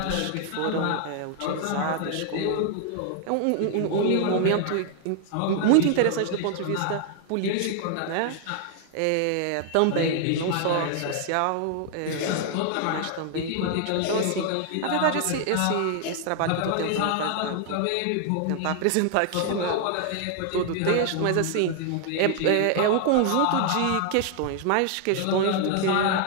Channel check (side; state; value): both; different; correlation 0.00